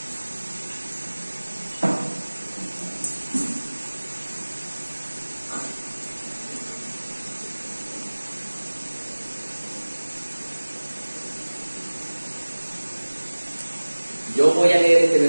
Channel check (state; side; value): inverted; both; correlation -1.00